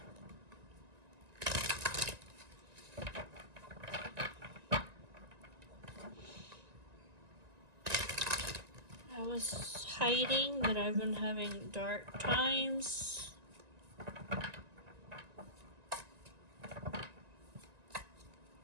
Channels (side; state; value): left; late; 1.9 ms